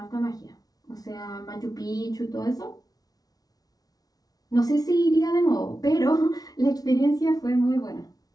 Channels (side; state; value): right; late; 0.18 ms